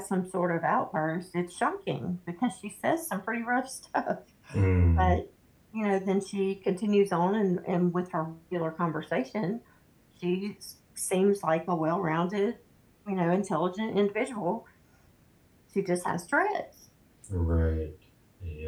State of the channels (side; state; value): both; identical; correlation 1.00